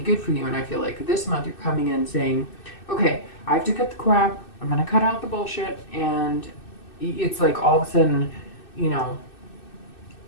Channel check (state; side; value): late; right; 2.6 ms